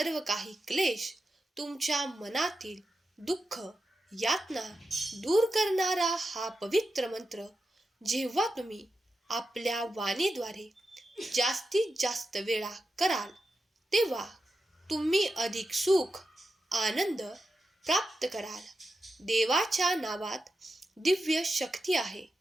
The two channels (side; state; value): both; normal; correlation 0.89